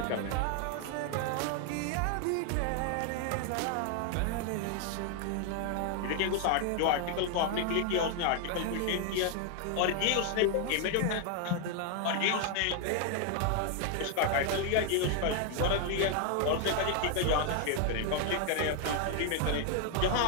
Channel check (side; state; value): both; different; correlation 0.00